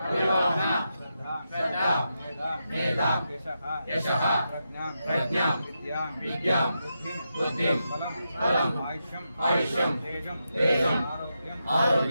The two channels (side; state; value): both; inverted; correlation -0.86